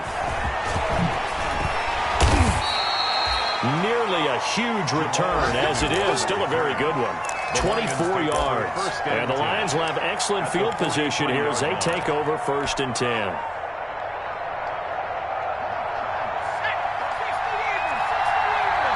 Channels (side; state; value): both; identical; correlation 1.00